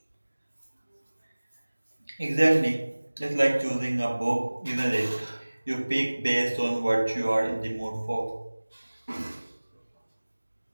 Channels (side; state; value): both; inverted; correlation -1.00